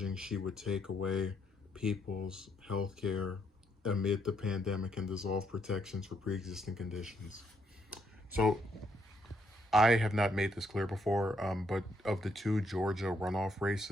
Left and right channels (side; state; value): both; normal; correlation 0.74